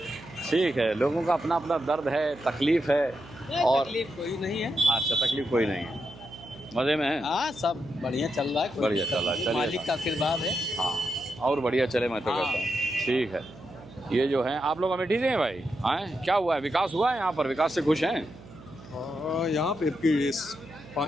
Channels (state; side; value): noise; right; hum, 19 dB below the sound